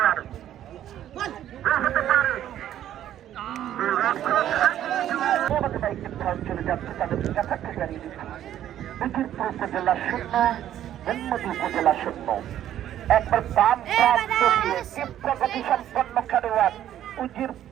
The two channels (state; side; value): quieter; left; 11.5 dB